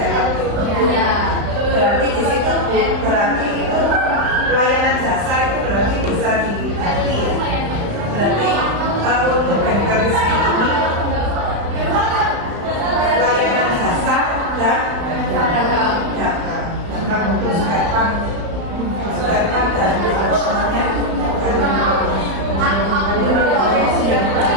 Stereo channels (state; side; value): late; left; 35 ms